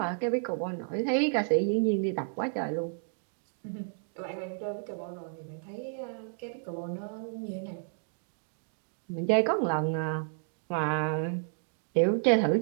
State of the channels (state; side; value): silent; left; digital silence